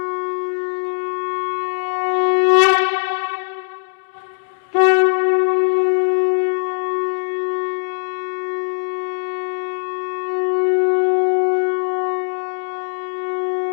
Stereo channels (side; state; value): right; silent; 66 dB below the other